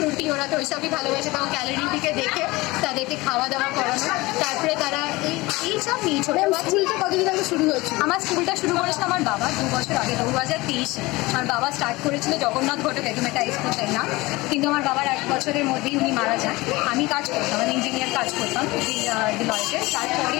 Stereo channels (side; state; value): right; quieter; 21.5 dB